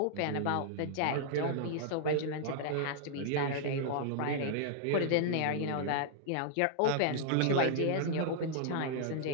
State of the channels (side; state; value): both; different; correlation -0.01